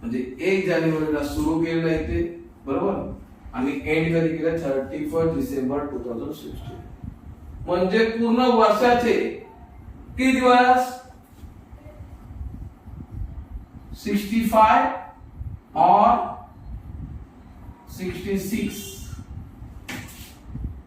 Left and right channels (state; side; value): identical; both; correlation 1.00